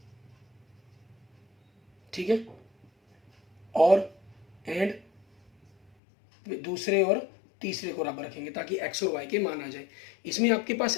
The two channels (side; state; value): right; drops out; at 5.9 s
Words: ठीक है, और एंड दूसरे और तीसरे को बराबर रखेंगे ताकि एक्स और वाई के मान आ जाए। इसमें आपके पास